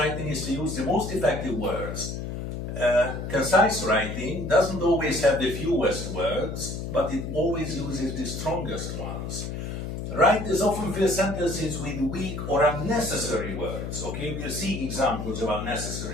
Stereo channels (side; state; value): left; noise; hum, 5 dB below the sound